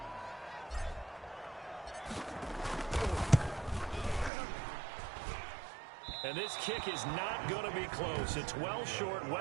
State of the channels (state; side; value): drops out; left; at 4.3 s